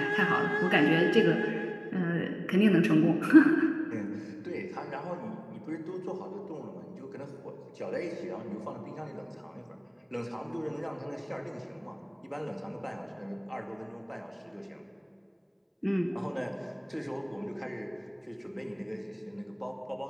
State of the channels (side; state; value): both; identical; correlation 1.00